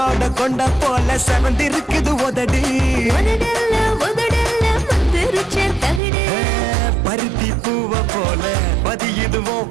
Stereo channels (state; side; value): drops out; left; at 6.0 s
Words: கொண்ட போல செவந்திருக்குது உதடி பருத்தி பூவ போல